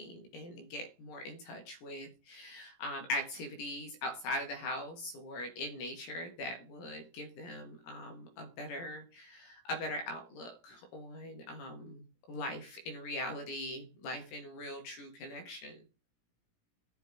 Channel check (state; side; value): late; right; 17 ms